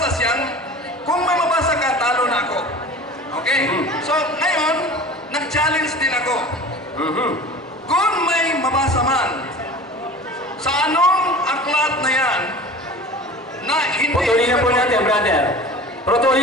mabasa ka, talo na ako. Okay? So, ngayon, nag-challenge din ako. Kung may mabasa man, sa anong aklat na yan, na hindi... Putulin na po natin, brother.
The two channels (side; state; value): both; normal; correlation 0.39